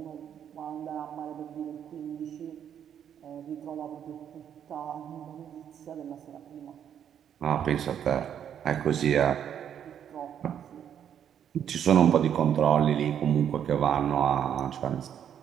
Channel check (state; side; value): quieter; left; 9.1 dB